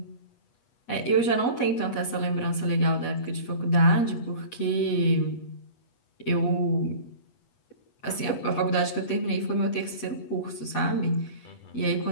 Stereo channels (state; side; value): late; right; 8.3 ms